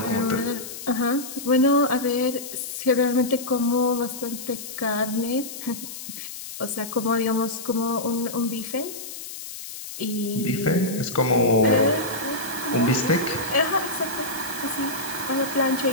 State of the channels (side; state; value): left; noise; hiss, 10 dB below the sound